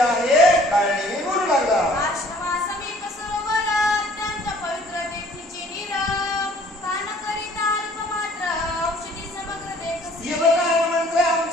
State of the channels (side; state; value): both; normal; correlation 0.55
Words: आहे. काळणी बोलू लागला. आश्रमा समीप सरोवर, अत्यंत पवित्र तेथीची नीर, पान करिता अल्प मात्र औषधी समग्र देखसी. हे बघा हनुमंत,